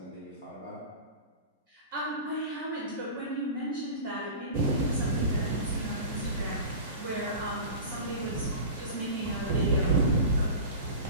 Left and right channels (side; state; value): both; inverted; correlation -0.33